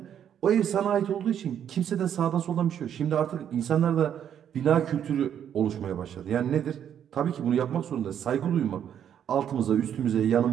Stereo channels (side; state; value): left; quieter; 9.3 dB